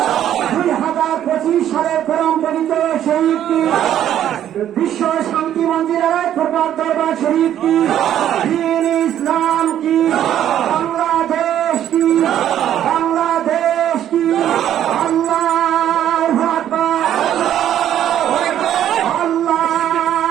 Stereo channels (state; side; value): quieter; left; 11.0 dB